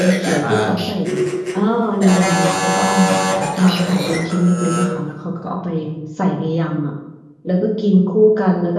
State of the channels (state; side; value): identical; both; correlation 1.00